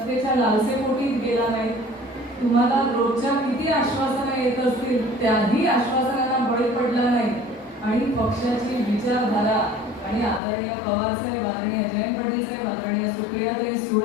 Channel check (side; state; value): right; drops out; at 10.4 s